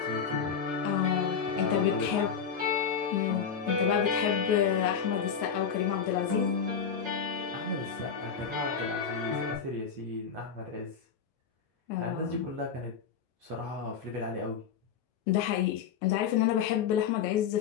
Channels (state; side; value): quieter; right; 6.9 dB